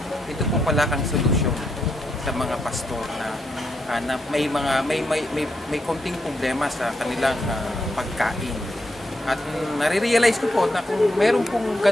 ito po pala ang solusyon sa mga pastor na may konting problema sa kanilang pagkain. At nare-realize ko po na kung meron pong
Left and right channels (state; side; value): normal; both; correlation 0.81